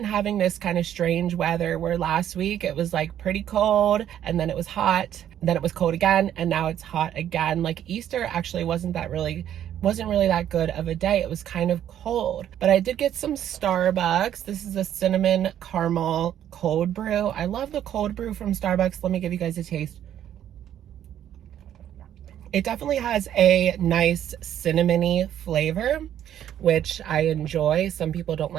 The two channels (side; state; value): left; quieter; 10.7 dB